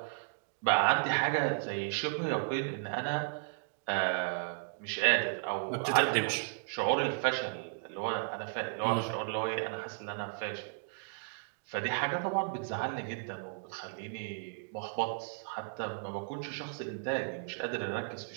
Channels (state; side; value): silent; left; digital silence